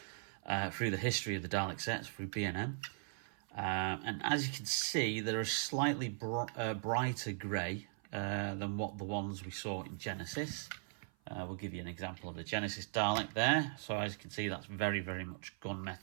through the history of the Dalek sets through B&M. And as you can see, they're a slightly brighter grey than what the ones we saw in Genesis. We'll give you an example of the Genesis Dalek there. So as you can see, that's very much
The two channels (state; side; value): silent; left; 52 dB below the other